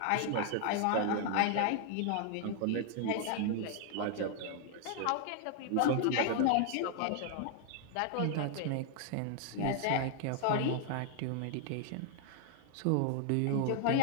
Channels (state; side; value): different; both; correlation 0.00